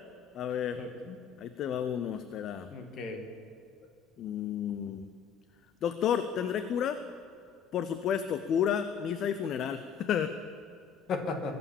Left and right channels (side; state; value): right; quieter; 7.6 dB